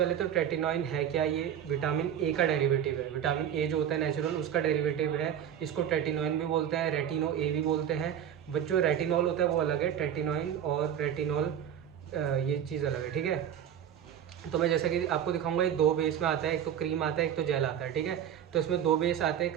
तो टेटिनॉइन है क्या? ये विटामिन ए का डेरिवेटिव है। विटामिन ए जो होता है नेचुरल, उसका डेरिवेटिव है। इसको टेटिनॉइन भी बोलते हैं, रेटिनो ए भी बोलते हैं। बट जो रेटिनॉल होता है वो अलग है, टेटिनॉइन और रेटिनॉल ये चीज़ अलग है, ठीक है। तो मैं जैसा कि आपको दिखाऊंगा, ये 2 बेस में आता है, एक तो क्रीम आता है, एक तो जेल आता है, ठीक है। तो इसमें 2 बेस आते हैं,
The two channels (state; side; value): quieter; left; 9.6 dB